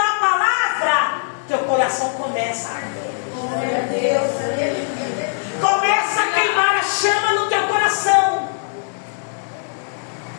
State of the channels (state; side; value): silent; right; 66 dB below the other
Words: palavra, teu coração começa a arder. Glória a Deus, Começa a queimar a chama no teu coração.